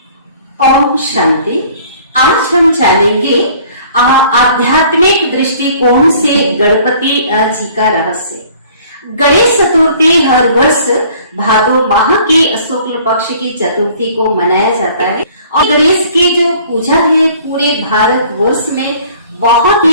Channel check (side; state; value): both; inverted; correlation -0.54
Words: ओम शांति। आज हम जानेंगे आध्यात्मिक दृष्टिकोण से गणपति जी का रहस्य। गणेश चतुर्थी हर वर्ष भादो माह की शुक्ल पक्ष की चतुर्थी को मनाया जाता है और गणेश की जो पूजा है पूरे भारत वर्ष में बहुत